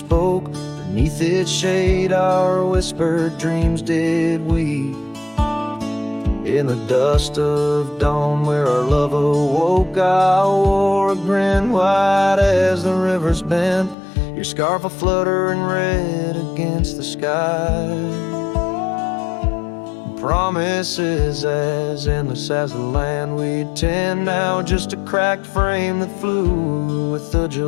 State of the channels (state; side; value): drops out; right; at 14.0 s